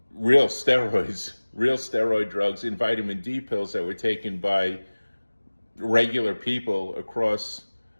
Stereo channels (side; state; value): both; inverted; correlation -1.00